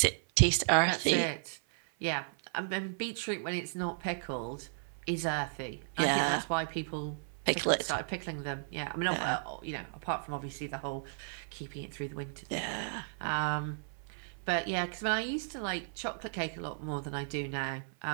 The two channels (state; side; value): silent; left; 55 dB below the other